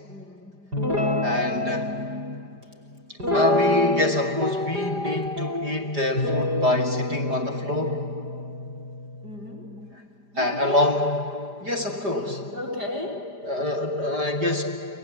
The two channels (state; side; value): late; left; 5.0 ms